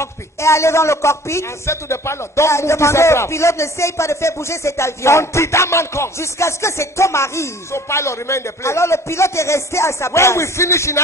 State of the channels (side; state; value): both; normal; correlation 0.49